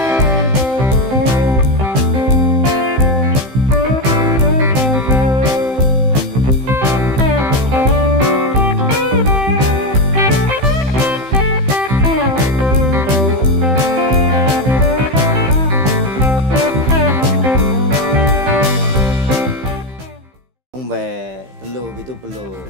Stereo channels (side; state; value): left; late; 15 ms